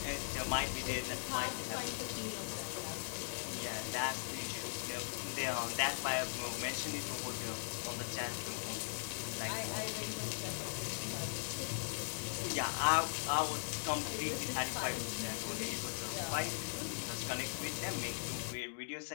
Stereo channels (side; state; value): right; silent; digital silence